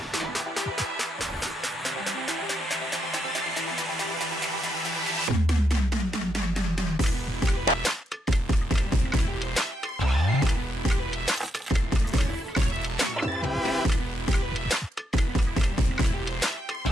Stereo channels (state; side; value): normal; both; correlation 0.81